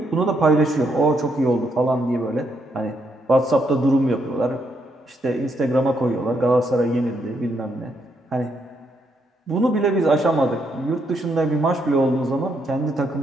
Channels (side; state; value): both; normal; correlation 0.76